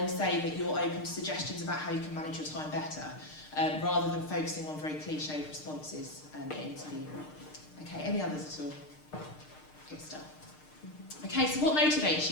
say that you're open to suggestions about how you can manage your time better. Rather than focusing on very cliched responses in interview. Okay, any others at all? Good stuff. Okay, so what motivates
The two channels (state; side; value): late; right; 6.6 ms